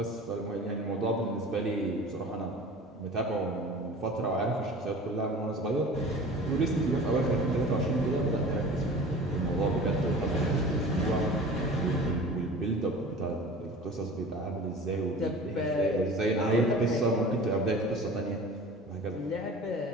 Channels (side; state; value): both; normal; correlation 0.40